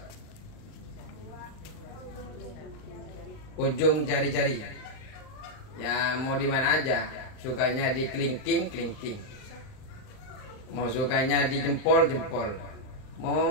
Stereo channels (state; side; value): late; right; 39 ms